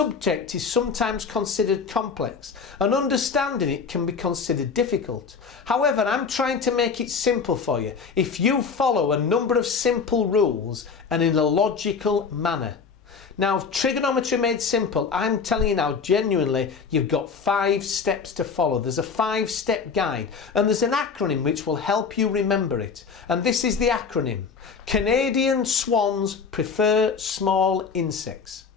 is sometimes considered complex and understanding it can be considered difficult. However, I'm trying to make it simple for you if you follow a number of simple rules and in a logical manner. Now, Trigonometry Made Simple, I'm telling you now genuinely, you've got 5 steps to follow. There's a 5-step guide and there's an acronym which will help you remember it. And this is the acronym: Canadian swans prefer small insects.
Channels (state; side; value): quieter; right; 5.5 dB